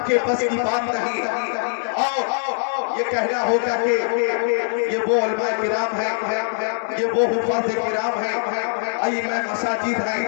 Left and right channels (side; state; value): right; silent; digital silence